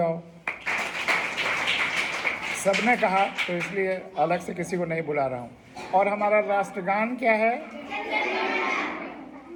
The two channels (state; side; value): identical; both; correlation 1.00